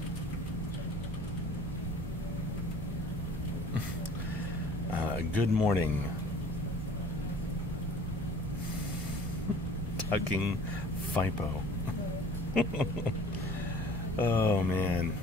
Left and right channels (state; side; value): normal; both; correlation 0.48